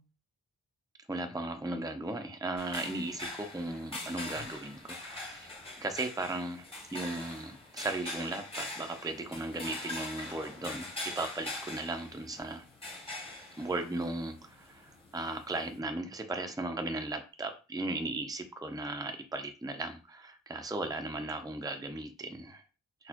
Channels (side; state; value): both; normal; correlation 0.46